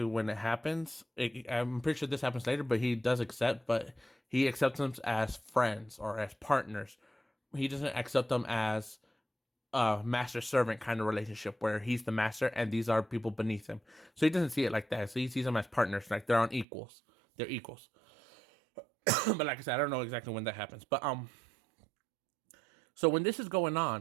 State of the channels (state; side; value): drops out; left; at 16.7 s